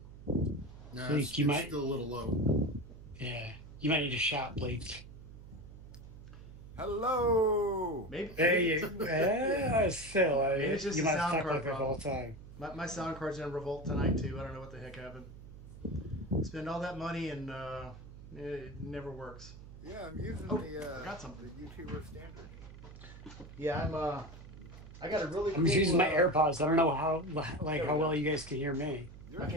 No, Blake, you it's might, still a little low. yeah, you might need to shout, Blake. Hello! Maybe Hey, it's still, maybe it's just you a might have sound talked card like this the whole problem. time. My sound card's in revolt tonight too. I don't know what the heck happened. Spend all that money and it never works. Yeah, I'm using Oh, forgot the something. YouTuber standard. Yeah, I got a really I'm just using cool. my AirPods. I don't know how, There we how go. well you guys can hear me. I Yours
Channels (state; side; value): noise; right; hum, 16 dB below the sound